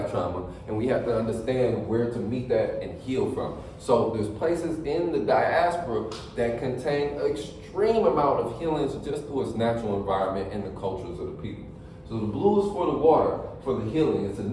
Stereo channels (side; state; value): both; identical; correlation 1.00